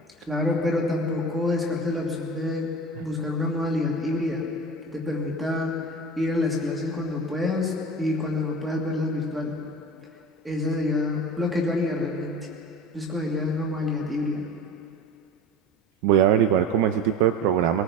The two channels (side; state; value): both; normal; correlation 0.34